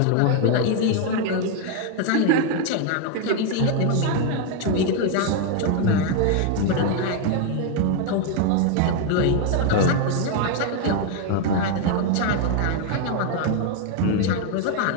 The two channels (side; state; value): both; different; correlation 0.01